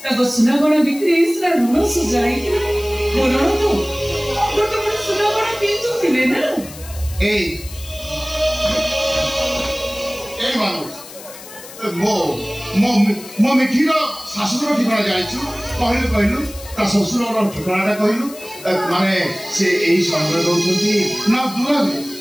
ताको सुना गणा बिक्री इसरा ऋण सुजाई ऋण तो सुना गणा पिंधु थिले ना। ए मानुस मो मो मो मिठीर शाशुर ठिकाना जाइछु कहलु ता ससुरर ठिकानाटा कहलु माने से एही समय दउछंती ना दूर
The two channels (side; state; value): left; noise; hiss, 16 dB below the sound